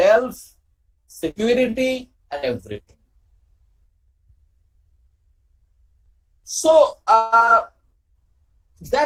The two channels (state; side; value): identical; both; correlation 1.00